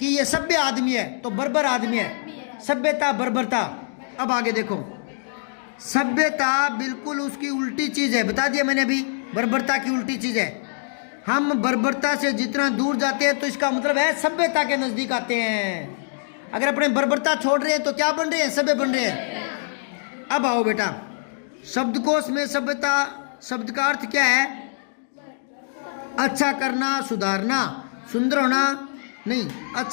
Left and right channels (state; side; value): silent; right; digital silence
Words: ये सभ्य आदमी है तो बर्बर आदमी है, सभ्यता बर्बरता। अब आगे देखो, सभ्यता बिल्कुल उसकी उल्टी चीज है, बता दिया मैंने अभी, बर्बरता की उल्टी चीज है। हम बर्बरता से जितना दूर जाते हैं तो इसका मतलब है सभ्यता के नजदीक आते हैं। अगर अपने बर्बरता छोड़ रहे हैं तो क्या बन रहे हैं? सभ्य बन रहे हैं। अब आओ बेटा, शब्दकोश में सभ्यता शब्द का अर्थ क्या है? अच्छा करना, सुधारना, सुंदर होना नहीं,